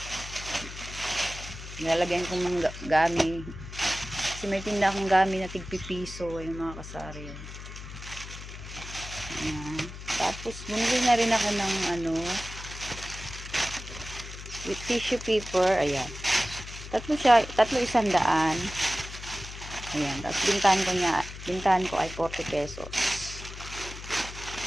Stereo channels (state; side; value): noise; left; hum, 12 dB below the sound